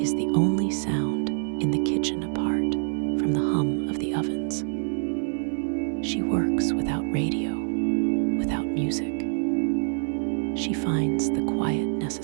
is the only sound in the kitchen apart from the hum of the ovens. She works without radio, without music. She finds the quiet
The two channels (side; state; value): left; silent; digital silence